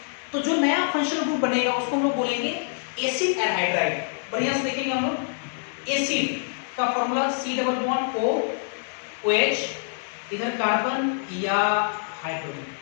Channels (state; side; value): silent; right; digital silence